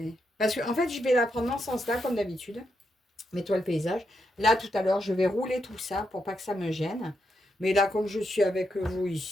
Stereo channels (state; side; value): normal; both; correlation 0.82